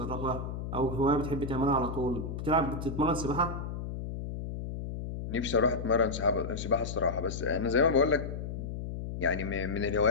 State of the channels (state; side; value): noise; left; hum, 6 dB below the sound